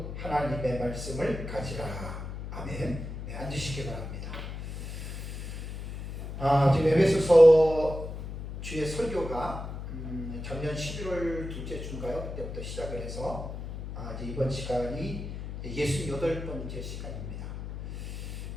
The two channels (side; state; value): left; noise; hum, 8 dB below the sound